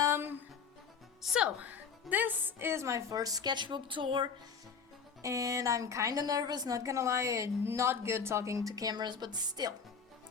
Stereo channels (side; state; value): right; quieter; 5.9 dB